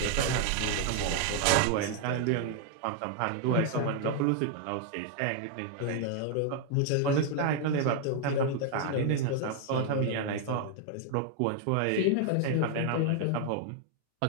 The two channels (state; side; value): different; both; correlation 0.00